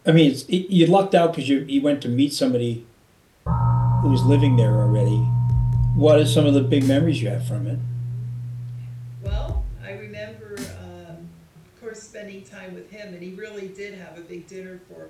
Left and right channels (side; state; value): both; identical; correlation 1.00